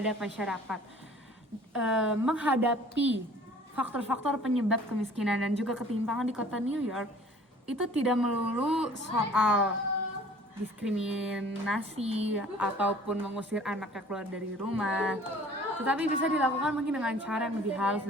masyarakat menghadapi faktor-faktor penyebab kemiskinan dan juga ketimpangan di kota New York. Itu tidak melulu soal diskriminasi ataupun mengusir anaknya keluar dari rumah, tetapi bisa dilakukan mungkin dengan cara yang lebih halus,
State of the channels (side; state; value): both; normal; correlation 0.50